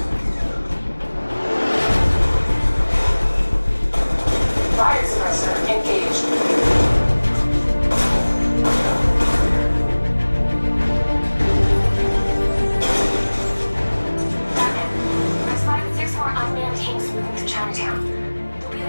Fire suppressor engaged. Batman, I spotted 6 more unmanned tanks moving to Chinatown. They'll be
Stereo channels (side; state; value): both; inverted; correlation -1.00